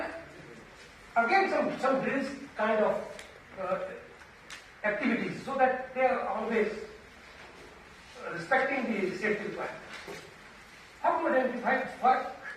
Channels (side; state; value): both; identical; correlation 1.00